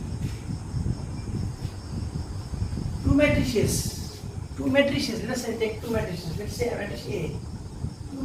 Two matrices, let's say take two matrices, let's say matrix A. Two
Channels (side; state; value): both; identical; correlation 1.00